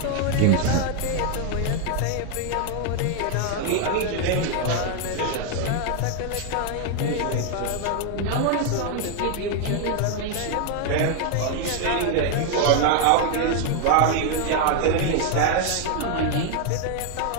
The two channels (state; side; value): different; both; correlation 0.01